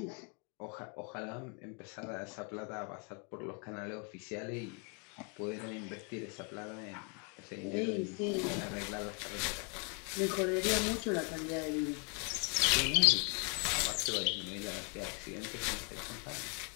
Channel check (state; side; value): quieter; right; 36.6 dB